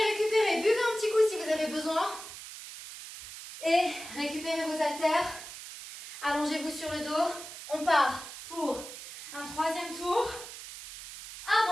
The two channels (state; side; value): noise; right; hiss, 12 dB below the sound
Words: Buvez un petit coup si vous avez besoin. Et récupérez vos haltères. Allongez-vous sur le dos. On part pour un 3e tour.